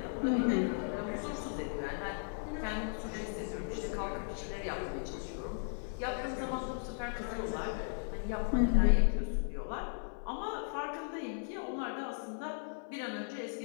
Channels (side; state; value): right; silent; 54 dB below the other